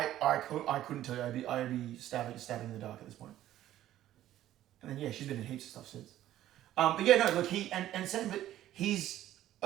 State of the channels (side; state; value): left; quieter; 13.2 dB